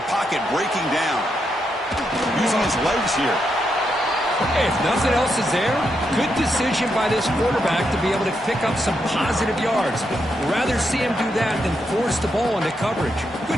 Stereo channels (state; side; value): normal; both; correlation 0.82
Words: pocket breaking down. Using his legs here. Hey, if nothing else is there, good decision by this quarterback to be able to pick up some positive yards. Rather see him do that than force the ball into coverage. Good